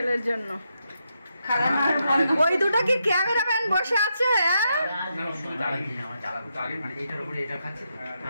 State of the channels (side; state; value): both; inverted; correlation -0.83